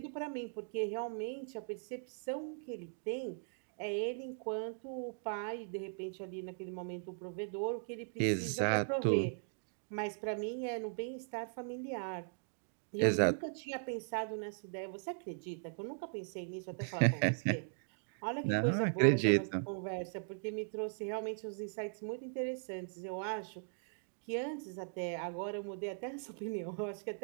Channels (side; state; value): left; silent; digital silence